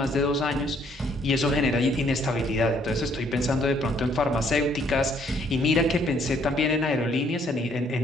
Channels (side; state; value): both; normal; correlation 0.65